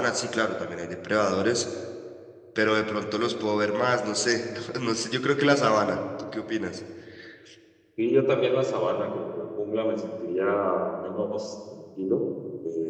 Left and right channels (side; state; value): both; identical; correlation 1.00